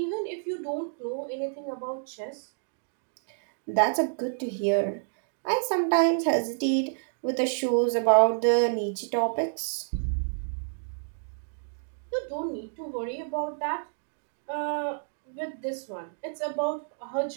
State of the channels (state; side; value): silent; left; digital silence